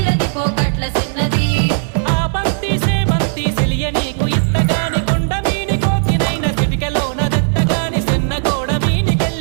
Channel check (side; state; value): left; silent; 69 dB below the other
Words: పోకట్ల చిన్నది ఆ బంతి సేబంతి సెలియ నీకు ఇత్తగాని కొండ మీని కోతినైన చిటికలోన దెత్తగాని సెన్నగోడ